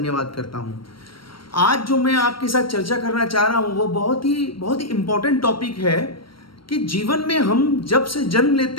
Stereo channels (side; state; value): right; late; 0.74 ms